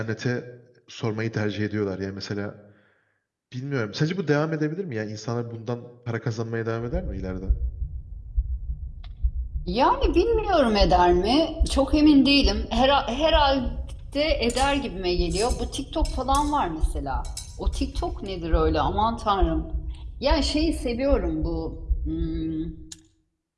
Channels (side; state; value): both; identical; correlation 1.00